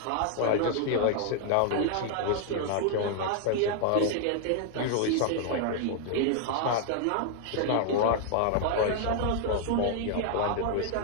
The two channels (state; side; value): different; both; correlation 0.00